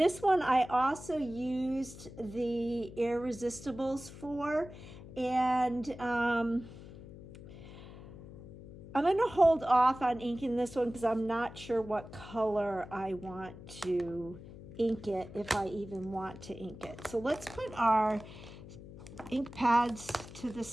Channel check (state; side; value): noise; left; hum, 15 dB below the sound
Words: one I also used the Irresistibles for, and I'm going to hold off on inking this one because I'm not sure what color I want to ink it, if I even want to ink it. So let's put our ink pads to the